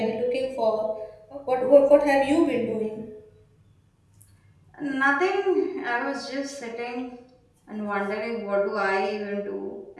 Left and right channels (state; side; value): identical; both; correlation 1.00